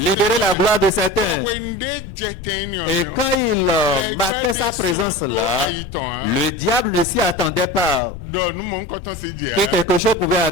la gloire de certains. Et quand il marquait sa présence là, le diable ne s'y attendait pas que quelque chose pouvait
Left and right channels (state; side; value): noise; left; rumble, 12 dB below the sound